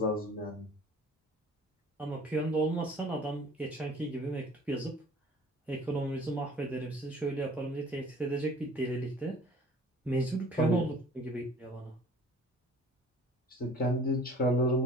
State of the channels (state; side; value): normal; both; correlation 0.48